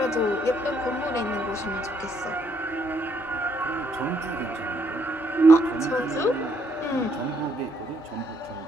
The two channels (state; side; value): normal; both; correlation 0.71